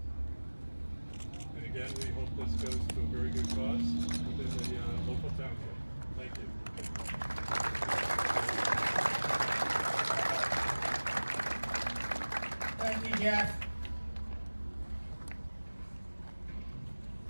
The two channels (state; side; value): inverted; both; correlation -1.00